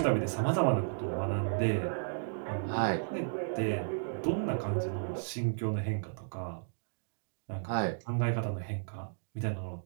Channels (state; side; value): silent; left; digital silence